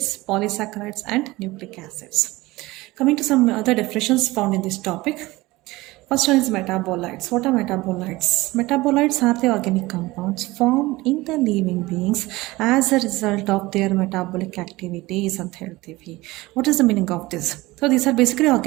polysaccharides, and nucleic acids. Coming to some other definitions found in this topic. First one is metabolites. What are metabolites? Metabolites are the organic compounds formed in the living beings as a result of their metabolic activities and healthy. What is the meaning of this? So these are basically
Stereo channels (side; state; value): left; quieter; 20.2 dB